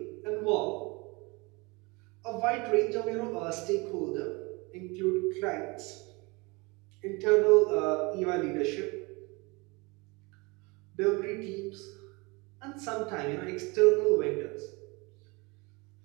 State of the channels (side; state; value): left; quieter; 26.7 dB